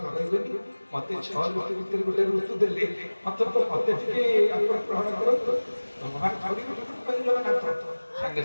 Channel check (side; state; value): both; inverted; correlation -1.00